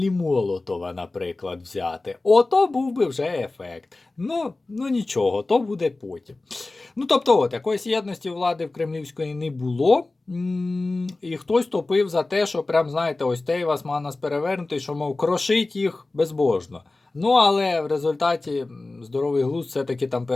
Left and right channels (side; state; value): right; quieter; 3.2 dB